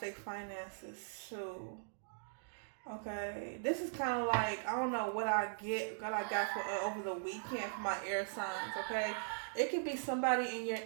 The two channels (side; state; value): left; silent; digital silence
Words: finances too. Okay, this is kind of like, I don't know what I got for over the weekend for my air signs. Okay, it could be somebody in your